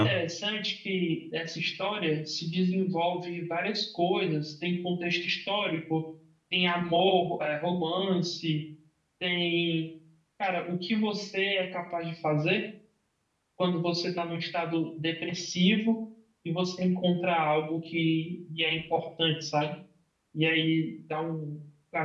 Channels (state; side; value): identical; both; correlation 1.00